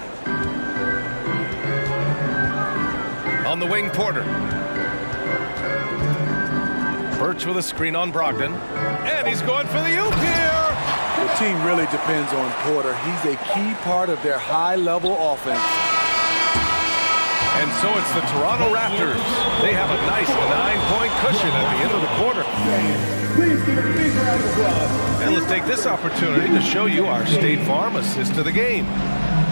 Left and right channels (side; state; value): both; inverted; correlation -1.00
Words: On the wing, Porter. Birch with a screen on Brogdon. And he's going for the oop here. The team really depends on Porter. He's a key part of their high-level offense. And so it's the Toronto Raptors. They have a nice 9-point cushion at the end of the quarter. Please give a big round of applause. And let's take this opportunity to show you our State Farm assist of the game.